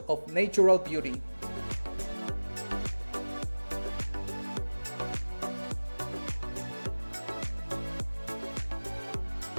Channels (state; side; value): inverted; both; correlation -1.00